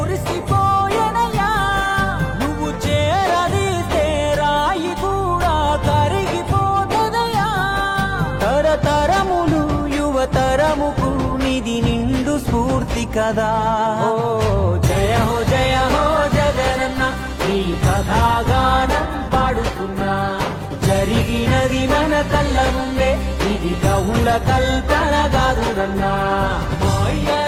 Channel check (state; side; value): identical; both; correlation 1.00